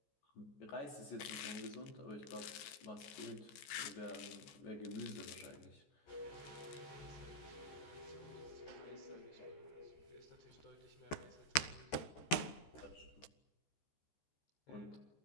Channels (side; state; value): right; late; 13 ms